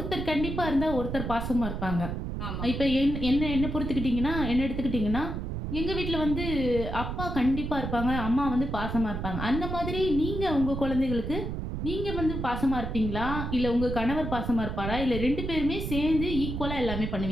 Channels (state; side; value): noise; right; rumble, 4 dB below the sound